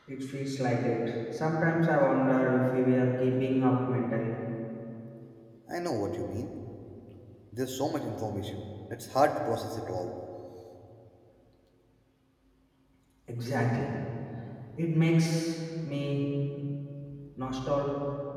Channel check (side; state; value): both; identical; correlation 1.00